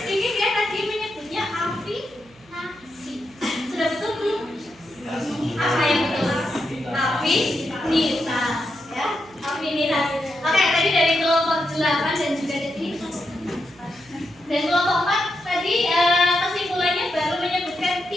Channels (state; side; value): noise; right; hum, 28 dB below the sound